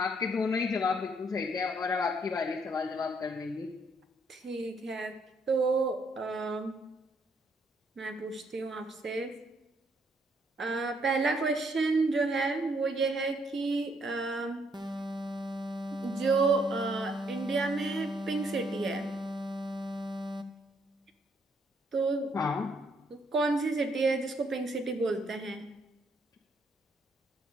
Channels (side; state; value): both; normal; correlation 0.70